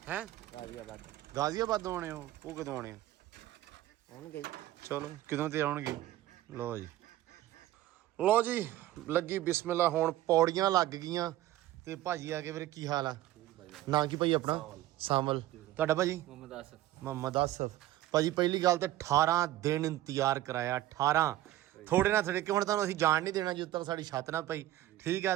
ਹੈ। ਗਾਜ਼ੀਆਬਾਦ ਆਉਣੇ ਉਹ ਕਦੋਂ ਆਉਣੇ ਹੋਣਗੇ ਚਲੋ ਕਿਦੋਂ ਤੇ ਆਉਣਗੇ। ਲੋ ਜੀ ਲੱਗੀ ਬਿਸਮਿਲ੍ਲਾ। ਹੁਣ ਪੌੜੀਆਂ ਲੱਗ ਗਈਆਂ ਤੇ ਭਾਜੀ ਆ ਕੇ ਵੀਰੇ ਕੀ ਹਾਲ ਆ? ਨਾਂ ਕੀ ਭਾਈ ਆਪਣਾ? ਸਾਮਲ। ਤੁਹਾਡਾ ਭਾਜੀ? ਮੁਹੰਮਦ ਆਸਫ। ਭਾਜੀ ਪਹਿਲੀ ਗੱਲ ਤੇ 18 ਦਿਨ ਇੰਤਜ਼ਾਰ ਕਰਾਇਆ। 18 ਥੋੜੇ ਨਾ ਥੋੜੇ ਕਿ ਹੁਣ ਤੁਹਾਨੂੰ ਅਸੀਂ ਜਾਣ ਨਹੀਂ ਦੇਣਾ ਜਦੋਂ ਤੱਕ ਸਾਡੀ ਛੱਤ ਨਾ ਪਈ। ਠੀਕ ਆ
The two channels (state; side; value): quieter; left; 14.7 dB